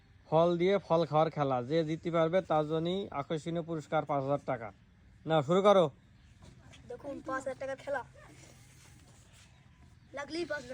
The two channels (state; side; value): identical; both; correlation 1.00